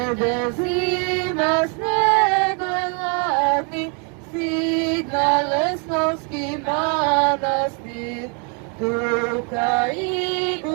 zima snega hladni, stigna Lesnovski manastir, tuka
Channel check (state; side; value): quieter; left; 37.9 dB